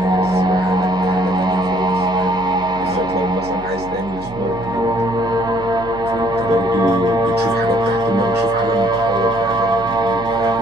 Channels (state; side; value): noise; right; hum, 15 dB below the sound